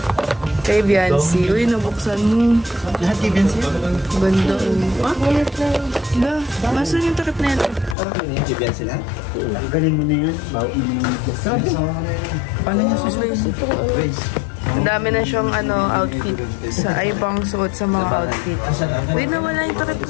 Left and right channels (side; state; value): right; drops out; at 8.0 s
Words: Kay Biancy. Uy, nabuksan mo. Lahat kay Biancy? Ganda oh. Ah? Ba? Masan yung takip na ito? Kay Biancy lang? Galing mo na yan. Bawa mo na yan. Paano niya susunod? Ang dami na siyang outfit. Sa ibang suot sa mga outfit. Uy, nawala yung takip